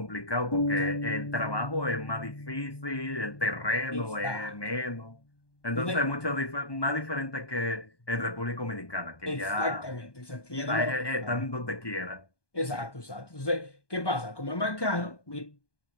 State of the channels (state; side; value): late; right; 1.2 ms